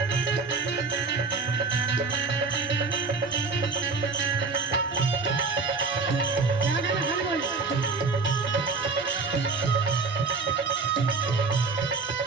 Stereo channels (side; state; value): left; quieter; 4.4 dB